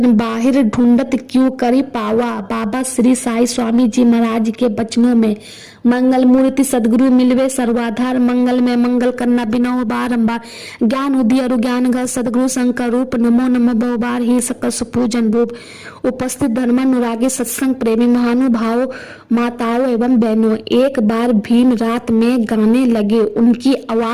बाहिर ढूंढत क्यों करी पावा। बाबा श्री साई स्वामी जी महाराज के वचनों में मंगल मूर्ति सदगुरु मिलवे सर्वाधार। मंगल में मंगल करना बिना बारंबार। ज्ञान उदय और ज्ञान घर सदगुरु शंकर रूप। नमो नमः बहुबार ही सकल सुपूजन रूप। उपस्थित धर्मानुरागी सत्संग प्रेमी महानुभाव माताओं एवं बहनों, एक बार भीम रात में गाने लगे। उनकी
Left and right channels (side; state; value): both; identical; correlation 1.00